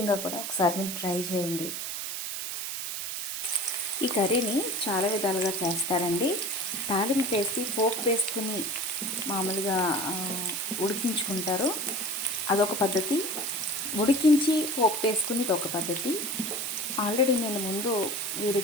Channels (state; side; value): noise; right; hiss, 4 dB below the sound